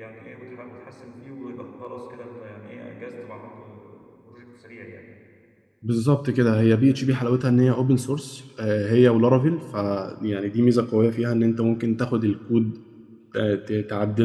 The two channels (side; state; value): both; identical; correlation 1.00